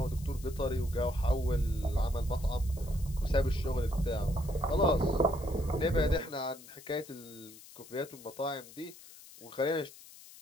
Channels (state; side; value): noise; left; hiss, 19 dB below the sound